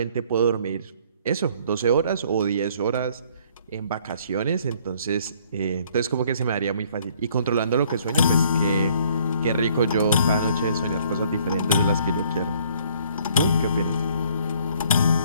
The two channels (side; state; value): both; inverted; correlation -0.61